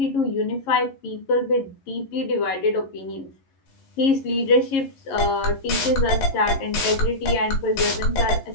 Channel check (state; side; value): late; right; 11 ms